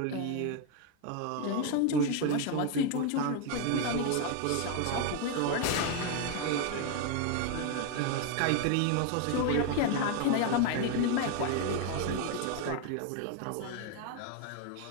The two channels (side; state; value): both; different; correlation 0.01